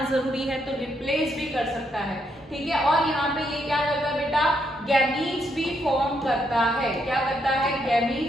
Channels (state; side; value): normal; both; correlation 0.77